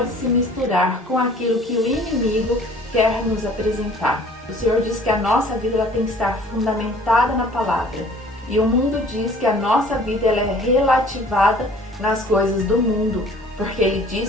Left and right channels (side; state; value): both; normal; correlation 0.51